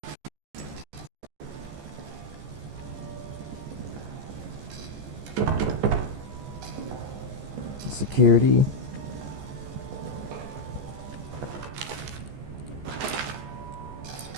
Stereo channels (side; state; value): left; late; 14 ms